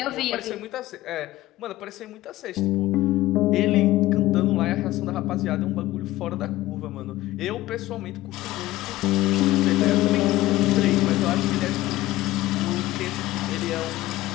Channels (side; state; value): right; quieter; 16.7 dB